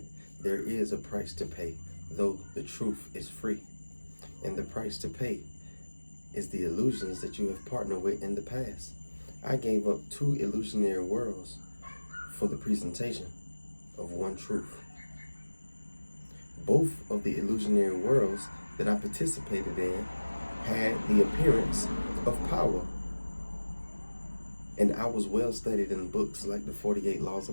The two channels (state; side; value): inverted; both; correlation -1.00